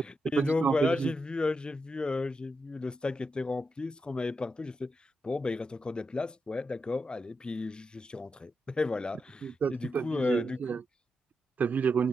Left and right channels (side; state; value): both; normal; correlation 0.86